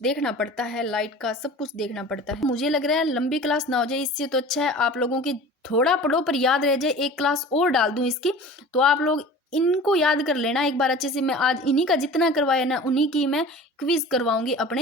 देखना पड़ता है, लाइट का सब कुछ देखना पड़ता है। मुझे लग रहा है लंबी क्लास ना हो जाए, इससे तो अच्छा है आप लोगों की थोड़ा पढ़ो पर याद रह जाए, एक क्लास और डाल दूं इसकी, तो आप लोग इनको याद कर लेना एक बार अच्छे से। मैं आज इन्हीं का जितना करवाया ना, उन्हीं की मैं क्विज करवाऊंगी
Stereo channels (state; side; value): normal; both; correlation 0.39